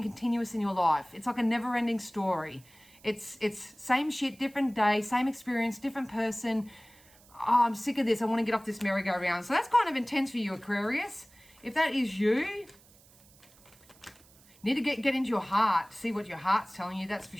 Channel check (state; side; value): noise; right; hiss, 27 dB below the sound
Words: continuous in your life. It's like a never-ending story. It's same shit, different day, same experience, different person. Oh, I'm sick of this. I want to get off this merry-go-round. So that's kind of intense for you, Aquarius. If that is you, need to get into your heart, see what your heart's telling you, that's for